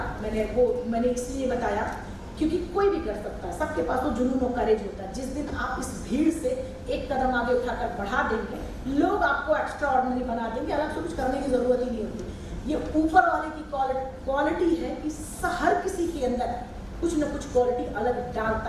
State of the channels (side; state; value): both; identical; correlation 1.00